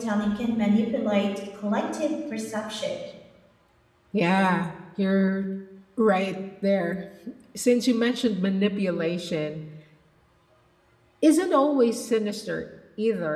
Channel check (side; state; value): both; identical; correlation 1.00